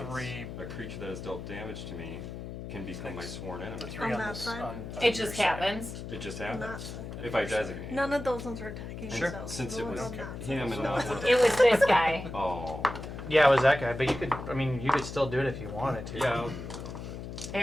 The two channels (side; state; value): left; noise; hum, 9 dB below the sound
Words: 3. a creature that has dealt damage to me can become my sworn The enemy. 3 On on that this. side? On It your just side. happens. It just On that happens. side. If I designate. None of those ones were attacking Sure. themselves. Since The it ones was on that side. him and not one. It was this guy. Oh. Yeah, it was that guy, but you could, I mean, you could still do it if you wanted to. Yeah. They